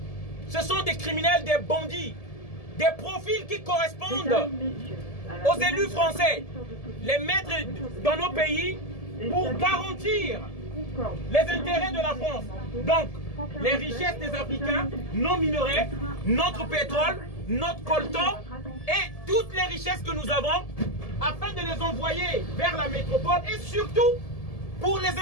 ce sont des criminels, des bandits, des profils qui correspondent aux élus français, les mettre dans nos pays pour garantir les intérêts de la France. Donc, les richesses des Africains, nos minerais, notre pétrole, notre coltan et toutes les richesses que nous avons, afin de les envoyer vers la métropole et surtout pour les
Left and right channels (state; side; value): late; right; 1.7 ms